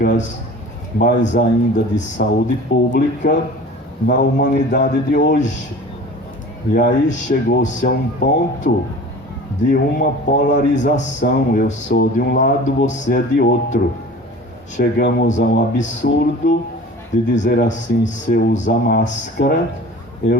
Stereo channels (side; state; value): both; normal; correlation 0.41